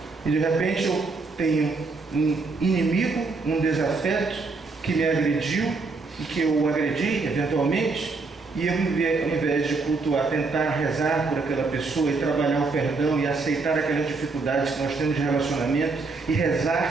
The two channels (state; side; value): quieter; left; 4.0 dB